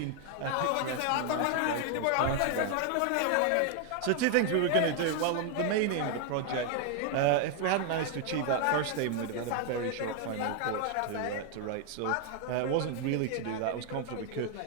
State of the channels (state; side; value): different; both; correlation 0.01